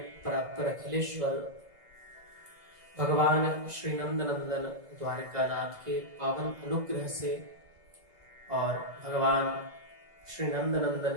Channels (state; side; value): late; left; 2.0 ms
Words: परात्पर अखिलेश्वर भगवान श्री नंदनंदन द्वारकानाथ के पावन अनुग्रह से और भगवान श्री नंदनंदन